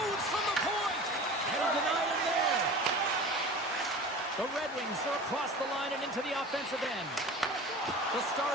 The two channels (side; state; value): both; normal; correlation 0.37